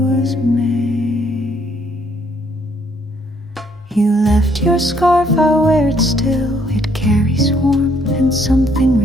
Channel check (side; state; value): both; normal; correlation 0.67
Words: May. You left your scarf, I wear it still. It carries warmth and something